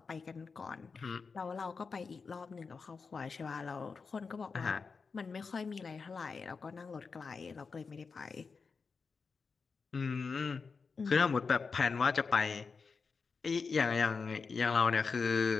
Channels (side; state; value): right; quieter; 5.0 dB